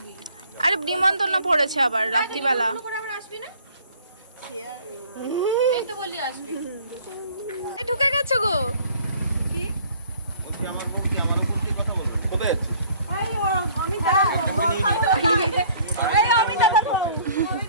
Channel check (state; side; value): inverted; both; correlation -0.55